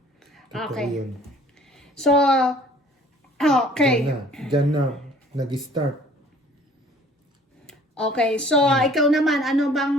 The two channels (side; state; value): both; normal; correlation 0.53